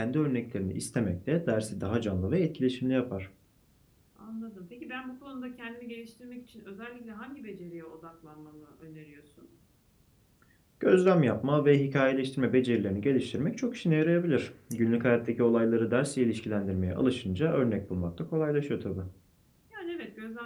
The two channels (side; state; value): both; identical; correlation 1.00